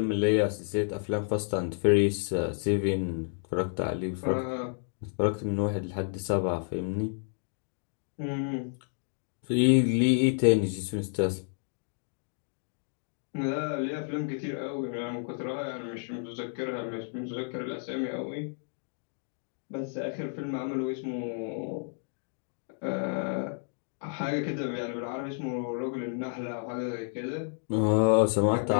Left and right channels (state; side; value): silent; right; 57 dB below the other